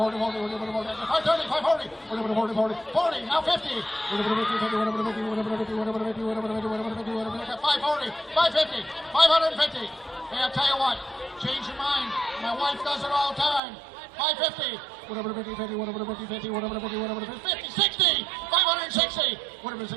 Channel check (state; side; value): drops out; left; at 13.6 s